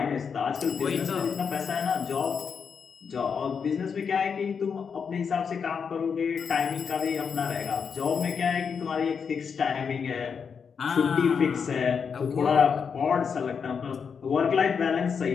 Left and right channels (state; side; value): quieter; right; 6.3 dB